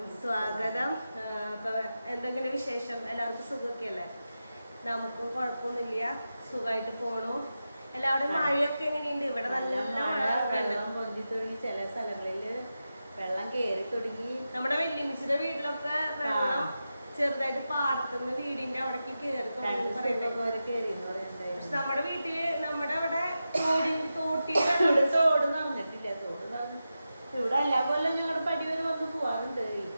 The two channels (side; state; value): both; inverted; correlation -0.91